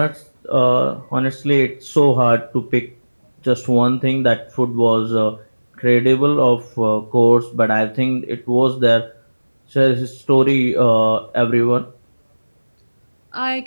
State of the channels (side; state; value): both; inverted; correlation -1.00